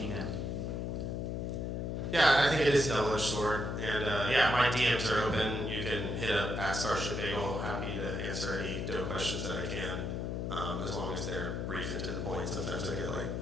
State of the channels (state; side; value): noise; left; hum, 2 dB below the sound